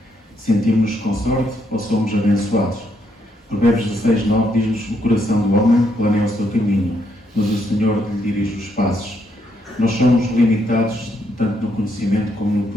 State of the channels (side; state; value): both; normal; correlation 0.75